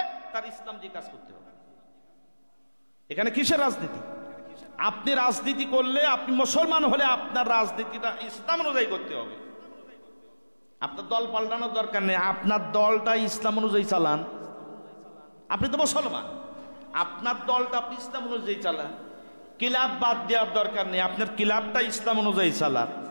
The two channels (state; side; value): inverted; both; correlation -1.00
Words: তার ইসলাম দিয়ে কাজ করতে হবে। এখানে কিসের রাজনীতি? আপনি রাজনীতি করলে, আপনি মুসলমান হলে আপনার রাজনীতিটা ইসলাম অনুযায়ী করতে হবে। আপনার দল পাল্টানোর দরকার নেই, আপনার দলটা ইসলাম অনুযায়ী চালান। আপনি তো মুসলমান, আপনার দলটা আপনি ইসলাম অনুযায়ী চালান। ক্লাব বাদ দেওয়ার দরকার নেই, আপনার ক্লাবটা ইসলাম অনুযায়ী চালান।